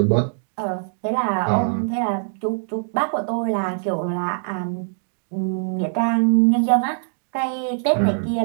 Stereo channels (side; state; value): left; silent; digital silence